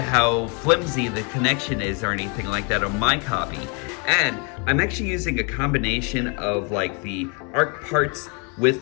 flimsy the connection is or anything like that on my copy. And I'm actually using a combination of like the Ark parts with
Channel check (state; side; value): quieter; right; 34.4 dB